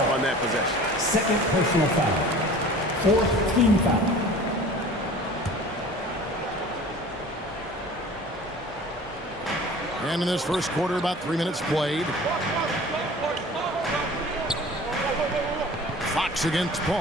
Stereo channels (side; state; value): both; normal; correlation 0.43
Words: on that possession. Second personal foul. 4th team foul. And in this first quarter, about 3 minutes played. Fox against